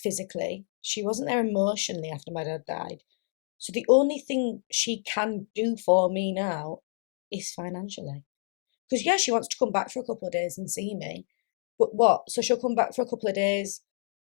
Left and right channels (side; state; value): right; silent; digital silence